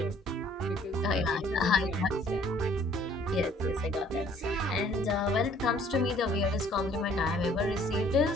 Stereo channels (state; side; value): normal; both; correlation 0.58